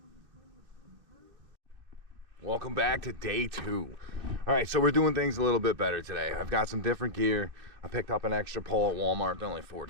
Welcome back to day 2. All right, so we're doing things a little bit better today. I've got some different gear. I picked up an extra pole at Walmart. They're only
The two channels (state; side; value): late; left; 2.7 ms